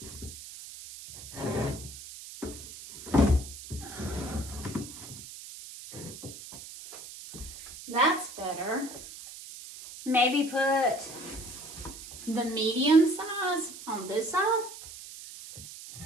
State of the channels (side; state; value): right; noise; hiss, 13 dB below the sound